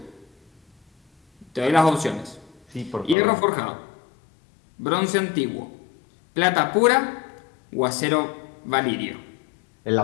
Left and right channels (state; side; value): drops out; right; at 3.2 s